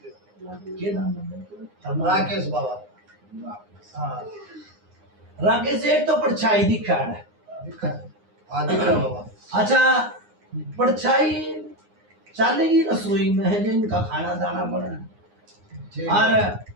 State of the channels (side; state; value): left; late; 9.7 ms